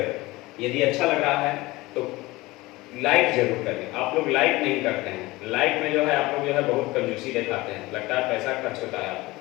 यदि अच्छा लग रहा है तो लाइक जरूर करें। आप लोग लाइक नहीं करते हैं, लाइक में जो है आप लोग जो है बहुत कंजूसी दिखाते हैं, लगता है पैसा खर्च होता है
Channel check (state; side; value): quieter; right; 20.4 dB